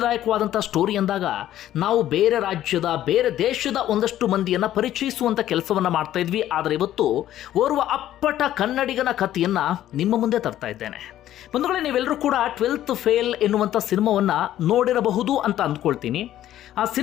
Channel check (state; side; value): quieter; right; 12.6 dB